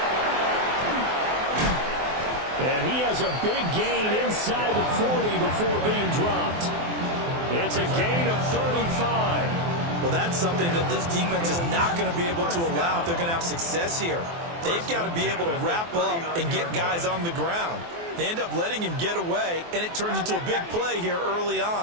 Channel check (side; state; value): left; late; 24 ms